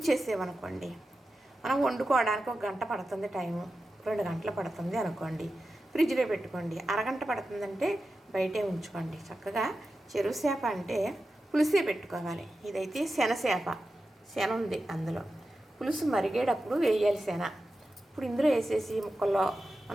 మనం వండుకోవడానికి 1 గంట పడుతుంది టైము, 2 గంటలు పడుతుంది అనుకోండి. ఫ్రిడ్జ్లో పెట్టుకోండి. అరగంట పడుతుందంటే బయటే ఉంచుకోండి. చక్కగా చెరువు చేప అంటే పులుసే పెట్టుకోవాలి. ఇదైతే శన ఉంది అందులో. పులుసు మరిగేటప్పుడు వేయాలి శన. ఇప్పుడు ఇందులో వేసేసి ముక్కల్లో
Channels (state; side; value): normal; both; correlation 0.92